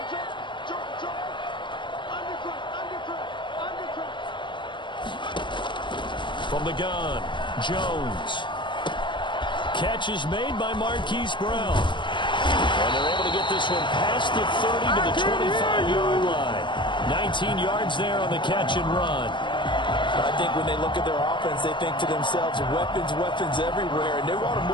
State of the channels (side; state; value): right; late; 0.23 ms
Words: From the gun, Jones. Catch is made by Marquise Brown. And they're able to get this one past the 30 to the 25-yard line. 19 yards there on the catch and run. I think when they look at their offense, they think to themselves, weapons, weapons everywhere, and they want to